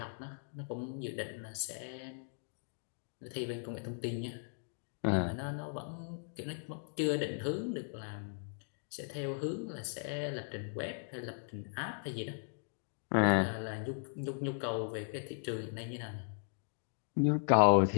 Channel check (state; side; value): silent; right; digital silence